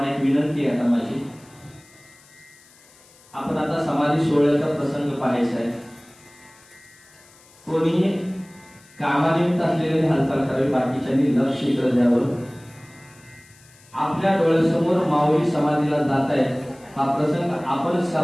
एक विनंती आहे आता माझी, आपण आता समाधी सोहळ्याचा प्रसंग पाहायचा आहे. कोणी कामानिमित्त असलेले हालचाल करावी, बाकीच्यांनी लक्ष इकडे द्यावं. आपल्या डोळ्यासमोर माऊली समाधीला जात आहे, हा प्रसंग आपण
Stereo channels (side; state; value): left; noise; hiss, 27 dB below the sound